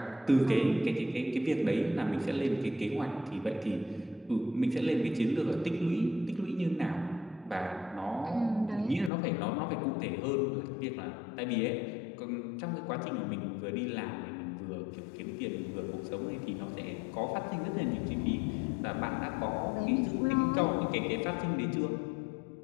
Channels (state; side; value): drops out; right; at 9.1 s